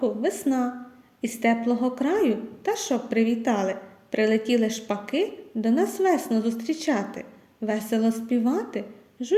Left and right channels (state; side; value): identical; both; correlation 1.00